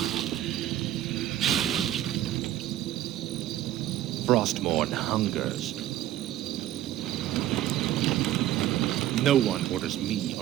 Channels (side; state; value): left; quieter; 13.1 dB